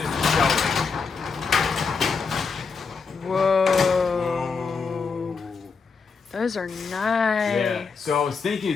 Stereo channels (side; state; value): right; quieter; 5.1 dB